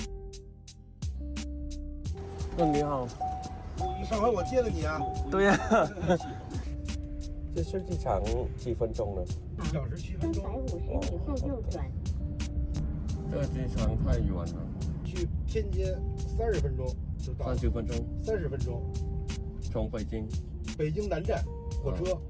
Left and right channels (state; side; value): identical; both; correlation 1.00